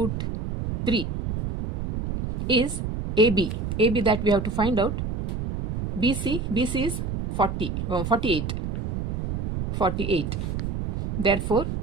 3 is AB. AB that we have to find out. BC is 48. Therefore,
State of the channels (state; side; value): noise; right; rumble, 3 dB below the sound